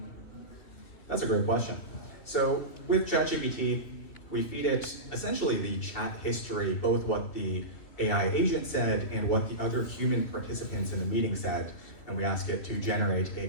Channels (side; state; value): right; late; 3.1 ms